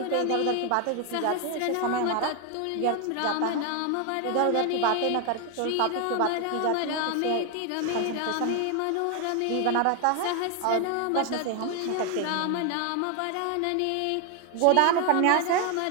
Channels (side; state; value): both; different; correlation 0.01